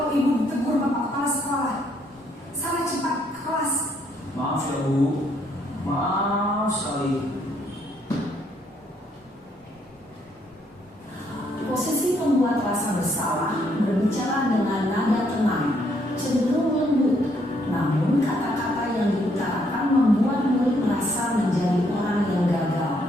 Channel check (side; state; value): both; normal; correlation 0.71